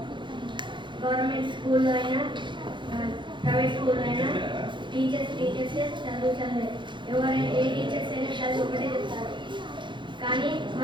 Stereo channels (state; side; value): late; left; 0.23 ms